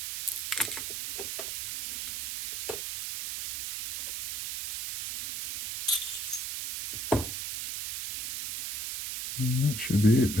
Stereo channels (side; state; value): right; noise; hiss, 5 dB below the sound